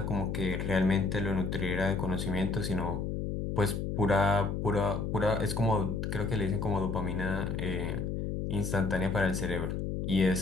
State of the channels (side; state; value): left; noise; hum, 2 dB below the sound